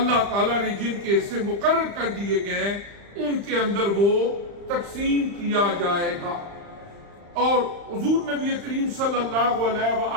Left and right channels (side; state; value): left; late; 35 ms